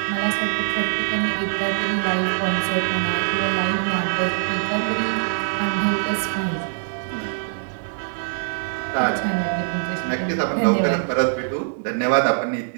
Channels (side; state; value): left; silent; digital silence